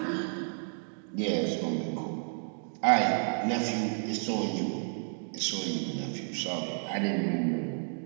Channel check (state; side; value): silent; left; 57 dB below the other